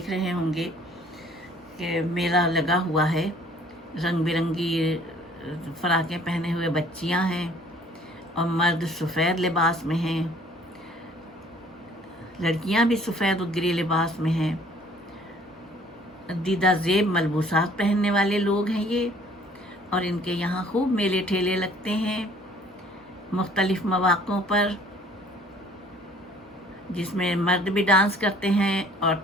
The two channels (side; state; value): both; normal; correlation 0.56